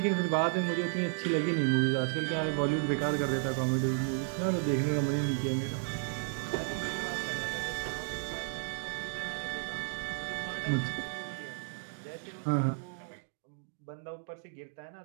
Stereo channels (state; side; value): silent; left; digital silence